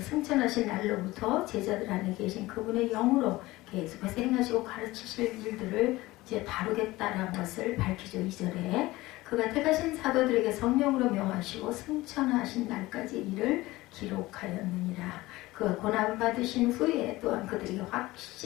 승천하신 날로부터 제자들 안에 계신 그분의 영으로 계속해서 행하시고 가르치실 일들을 이제 다루겠다라는 것을 밝히죠. 2절에 그가 택하신 사도들에게 성령으로 명하시고 승천하신 날까지 이를 기록하였느니라. 그가 고난을 받으신 후에 또한 그들에게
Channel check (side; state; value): right; quieter; 19.1 dB